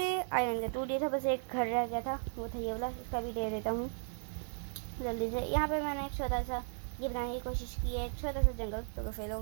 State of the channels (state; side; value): silent; left; digital silence